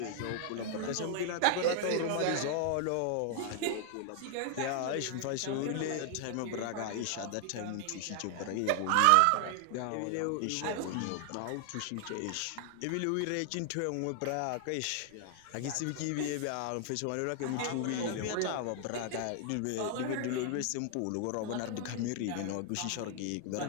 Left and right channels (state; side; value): different; both; correlation 0.00